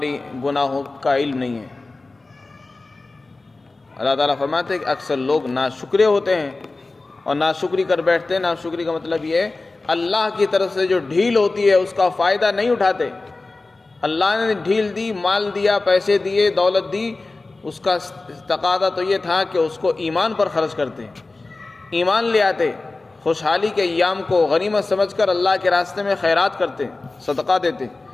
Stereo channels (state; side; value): quieter; right; 3.4 dB